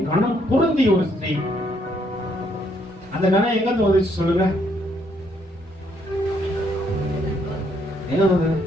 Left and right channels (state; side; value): normal; both; correlation 0.70